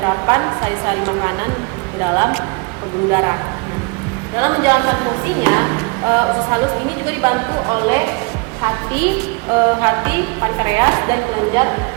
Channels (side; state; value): left; quieter; 29.1 dB